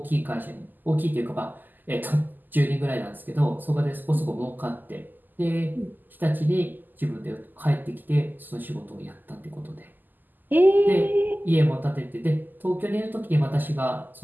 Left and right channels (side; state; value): left; late; 0.087 ms